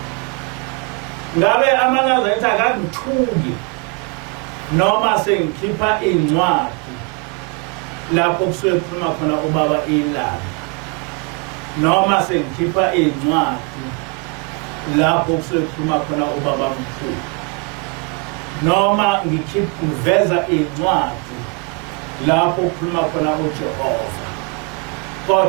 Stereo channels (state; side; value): quieter; left; 32.1 dB